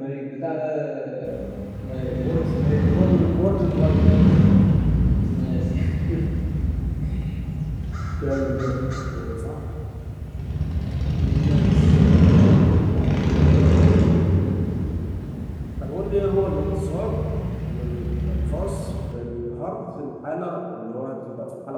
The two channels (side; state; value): both; identical; correlation 1.00